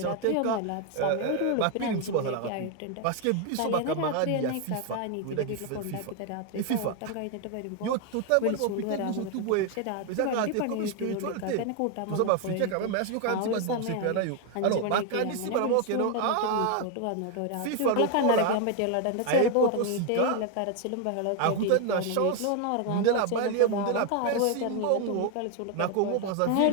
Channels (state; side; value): different; both; correlation 0.01